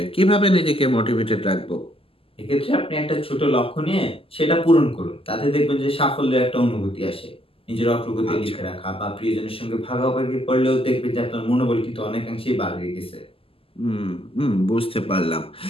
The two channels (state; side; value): late; right; 0.26 ms